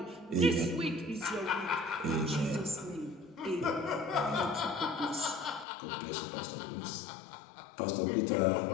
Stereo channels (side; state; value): right; drops out; at 5.7 s